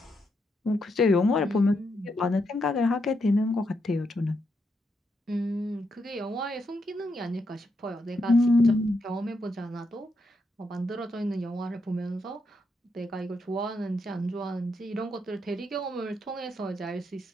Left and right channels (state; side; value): normal; both; correlation 0.81